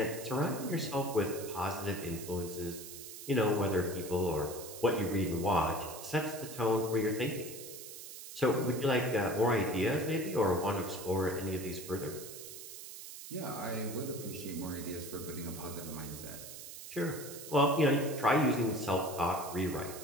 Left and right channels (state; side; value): noise; right; hiss, 12 dB below the sound